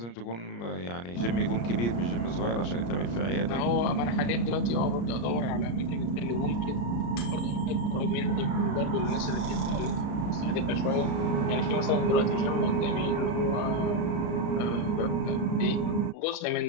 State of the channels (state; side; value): late; right; 34 ms